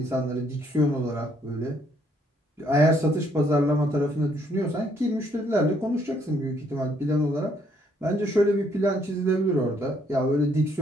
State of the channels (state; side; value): normal; both; correlation 0.68